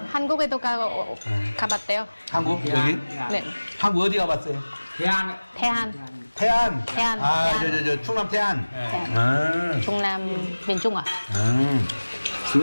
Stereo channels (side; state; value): both; inverted; correlation -1.00